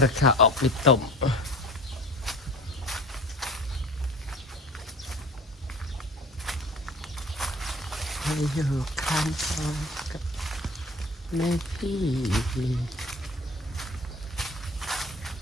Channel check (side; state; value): both; normal; correlation 0.41